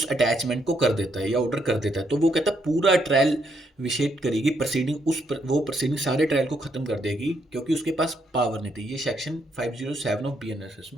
अटैचमेंट को कर देता है या ऑर्डर कर देता है, तो वो कहता है पूरा ट्रायल विशेष करेगी प्रोसीडिंग वो प्रोसीडिंग सारे ट्रायल को ख़त्म कर देगी क्योंकि उसके पास पावर नहीं थी। ये सेक्शन 507 ऑफ बीएनएसएस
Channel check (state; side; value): normal; both; correlation 0.75